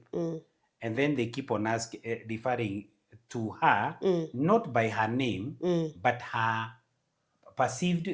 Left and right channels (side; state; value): both; identical; correlation 1.00